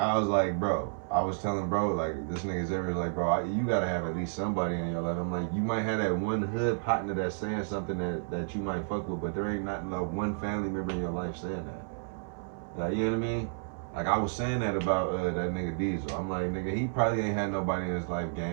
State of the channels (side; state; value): left; silent; 57 dB below the other